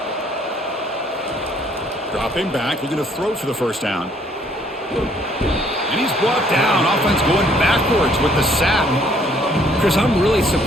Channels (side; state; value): both; normal; correlation 0.63